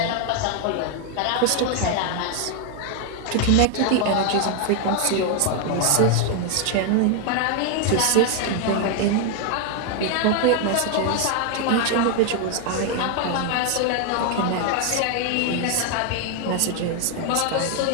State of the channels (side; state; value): both; different; correlation 0.01